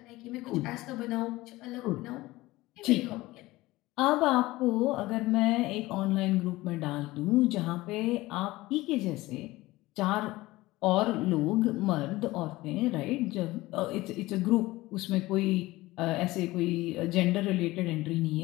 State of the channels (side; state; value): right; quieter; 19.0 dB